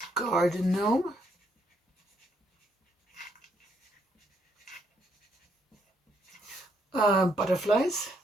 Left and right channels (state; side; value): normal; both; correlation 0.72